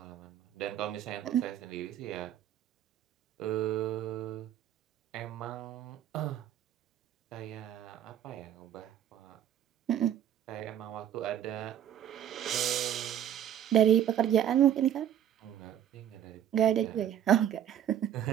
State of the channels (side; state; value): left; quieter; 10.3 dB